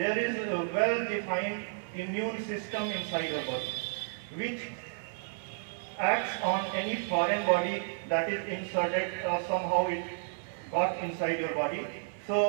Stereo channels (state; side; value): silent; left; digital silence